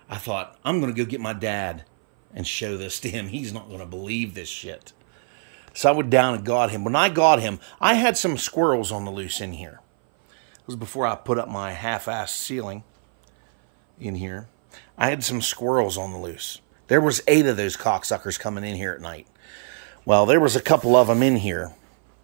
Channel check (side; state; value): left; silent; 59 dB below the other